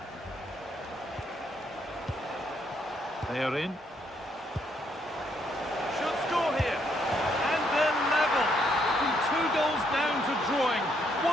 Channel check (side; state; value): both; normal; correlation 0.73